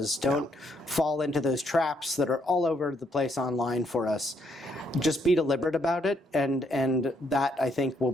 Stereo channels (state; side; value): normal; both; correlation 0.73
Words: Don't fall into those traps that are all over the place online for us. Just be deliberate about it, and that, I think, will